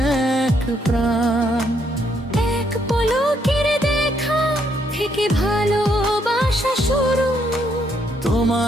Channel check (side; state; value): both; normal; correlation 0.73